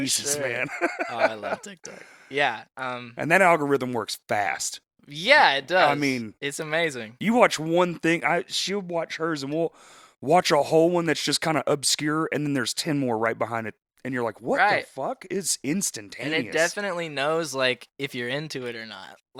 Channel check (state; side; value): identical; both; correlation 1.00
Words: for sure. man. Oh, I love TikTok. Yeah. And that algorithm works fast. Yeah, it does. I mean, it's amazing. You watch one thing, she'll watch hers, and we'll watch a whole one that's just kind of obscure, and then there's 10 more right behind it, and you're like, what the fuck? It's instantaneous. And it definitely knows, like, if you're into it or not.